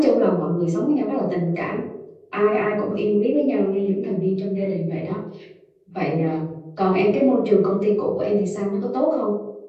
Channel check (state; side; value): identical; both; correlation 1.00